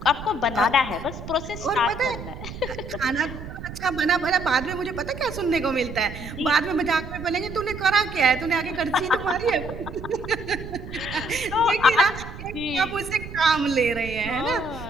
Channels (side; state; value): right; noise; rumble, 11 dB below the sound